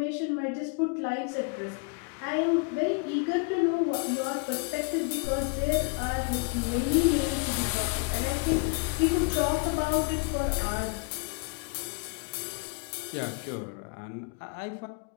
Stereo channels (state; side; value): quieter; right; 35.2 dB